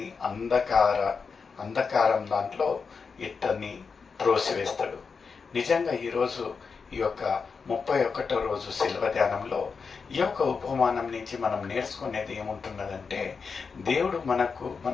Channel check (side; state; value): right; quieter; 5.3 dB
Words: అంధకారం దాంట్లో ఇతన్ని త్రోసివేస్తాడు. నిజంగా ఈరోజు ఈ యొక్క 31వ రోజు శిల్వ ధ్యానంలో ఈ యొక్క ఉపమానం నుంచి మనం నేర్చుకునేది ఏముంటున్నదంటే, దేవుడు